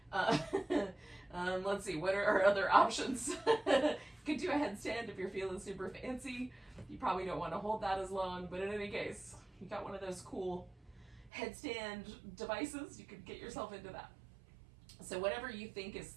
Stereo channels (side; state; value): left; drops out; at 11.3 s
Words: Let's see, what are our other options? You could do a headstand if you're feeling super fancy. You probably don't want to hold that as long, but in any case, you got one of those cool headstand devices, you could get yourself into that. So whatever you think is